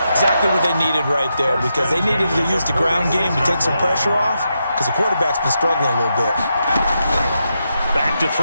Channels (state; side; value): inverted; both; correlation -0.85